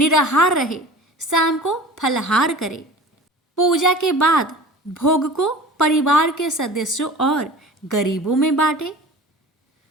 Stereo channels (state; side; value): normal; both; correlation 0.40